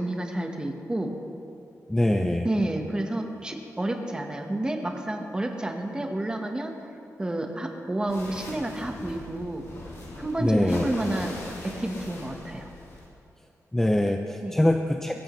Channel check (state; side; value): normal; both; correlation 0.95